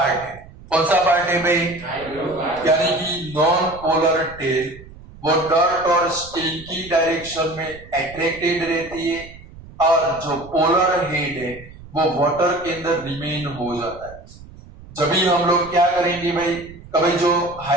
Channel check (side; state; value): right; noise; rumble, 19 dB below the sound